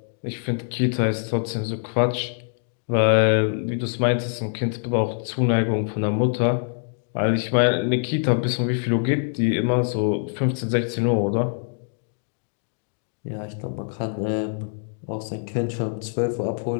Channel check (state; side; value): silent; right; digital silence